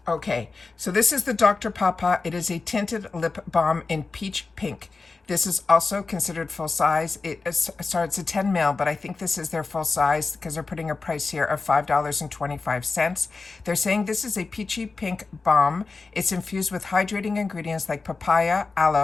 Okay, so this is the Dr. Papa. It is a tinted lip balm in peach pink. This is also considered full size. Sorry, it's a 10 ml, but I think this is their full size because they're putting a price here of $5.25. They're saying this is a peachy pink balm. It's infused with hydrating ingredients like papaya,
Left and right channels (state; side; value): quieter; right; 4.1 dB